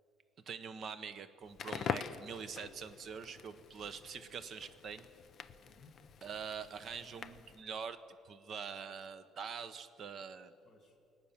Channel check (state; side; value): normal; both; correlation 0.62